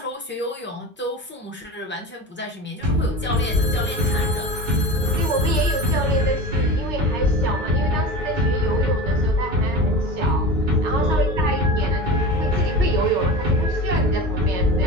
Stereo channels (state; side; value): normal; both; correlation 0.31